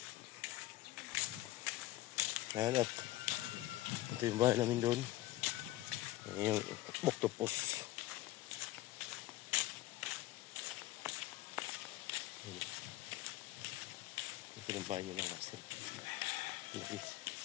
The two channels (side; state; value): right; quieter; 16.5 dB